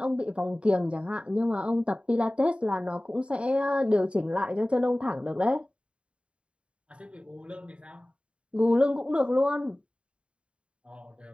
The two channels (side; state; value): left; late; 0.058 ms